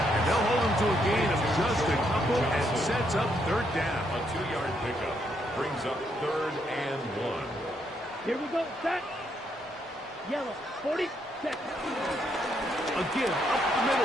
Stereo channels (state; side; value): normal; both; correlation 0.75